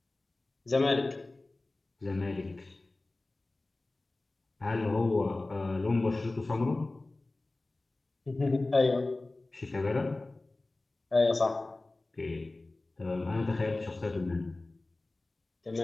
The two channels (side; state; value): right; quieter; 3.0 dB